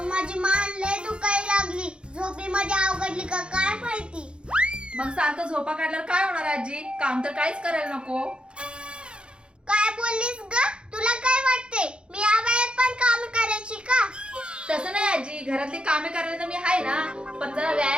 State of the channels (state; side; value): late; left; 0.054 ms